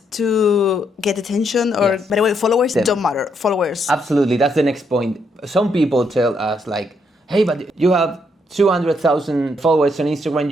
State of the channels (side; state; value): both; normal; correlation 0.75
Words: to get attention, or by the way, followers don't matter. Followers. Absolutely, that's the next point. Some people tell us like, hey, but you have 200,000 followers on Instagram,